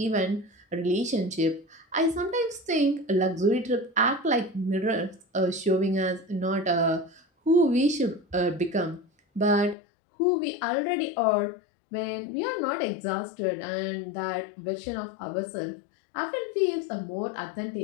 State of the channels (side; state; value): right; drops out; at 9.8 s